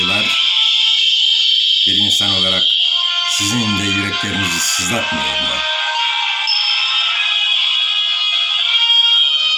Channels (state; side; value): identical; both; correlation 1.00